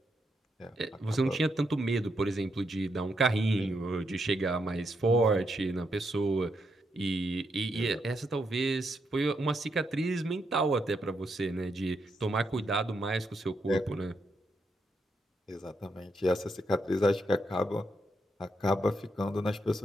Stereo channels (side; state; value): both; normal; correlation 0.80